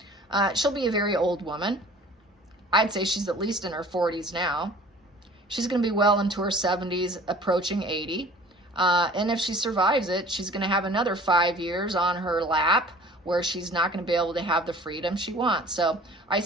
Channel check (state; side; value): normal; both; correlation 0.47